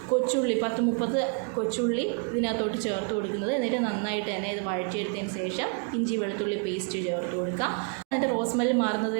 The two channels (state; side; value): quieter; left; 38.5 dB